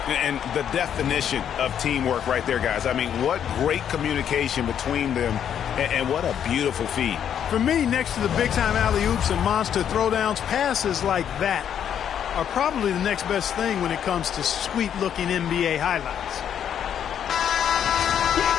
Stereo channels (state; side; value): quieter; right; 9.1 dB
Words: And the definition of teamwork right there, guys. I mean, what great communication between them, and what a beautiful feed. For me, next to the big-time alley-oops and monster throwdowns, passes like that are probably the next best thing when it comes to sweet-looking NBA highlights.